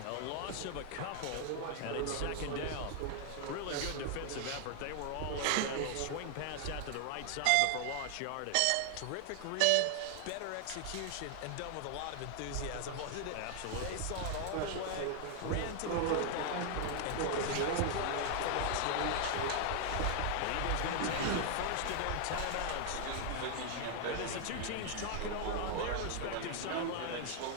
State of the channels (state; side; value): different; both; correlation 0.00